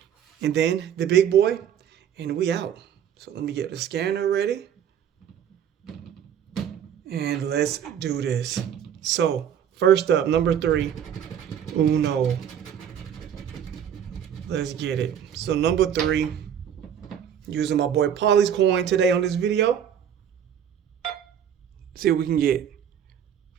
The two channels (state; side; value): quieter; left; 9.0 dB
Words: and then the big boy, and we out. So let me get the scanner ready. And let's do this. So, first up, number 3, Uno. Let's get it. So, number 3, using my boy Polly's coin today on this video. See what we can get.